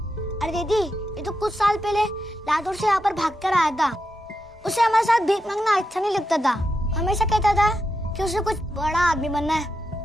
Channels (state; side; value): normal; both; correlation 0.86